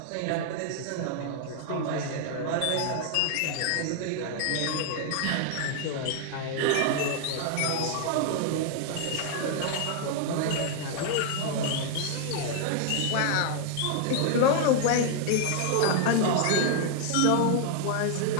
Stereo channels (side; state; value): both; different; correlation 0.00